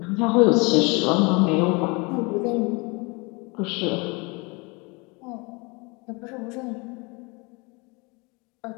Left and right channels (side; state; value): right; quieter; 28.3 dB